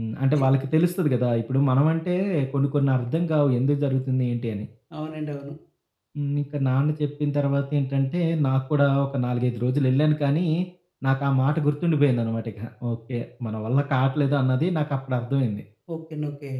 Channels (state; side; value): identical; both; correlation 1.00